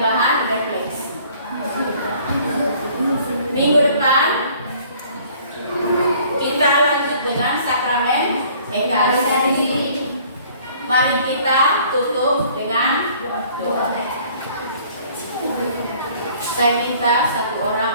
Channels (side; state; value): both; inverted; correlation -0.56